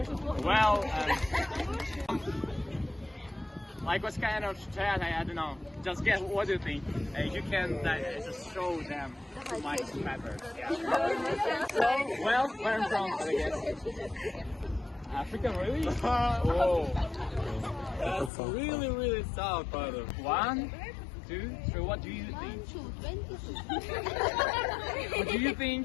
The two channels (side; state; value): right; drops out; at 18.3 s